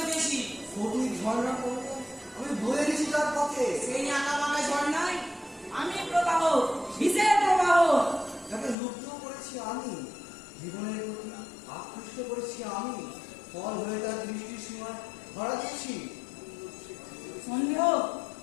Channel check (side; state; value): right; drops out; at 8.8 s